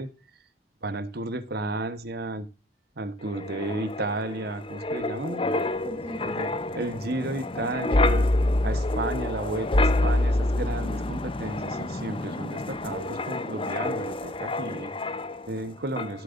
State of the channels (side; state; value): both; normal; correlation 0.57